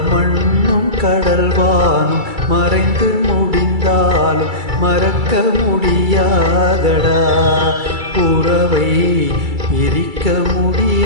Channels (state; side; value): late; left; 2.3 ms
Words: மண்ணும் கடல்வானும் மறைந்து முடிந்தாலும் மறக்க முடியாதடா, உறவை பிரிக்க